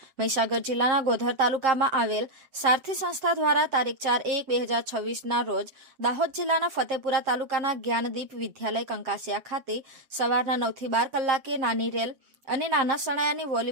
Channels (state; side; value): late; left; 7.5 ms